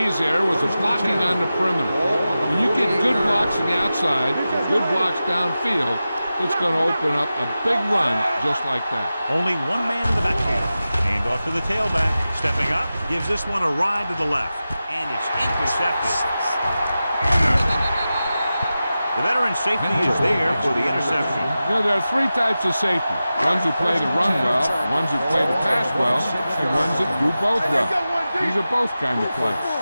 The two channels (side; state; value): both; inverted; correlation -0.94